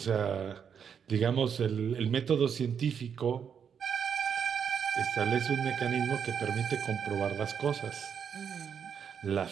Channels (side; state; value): left; quieter; 7.4 dB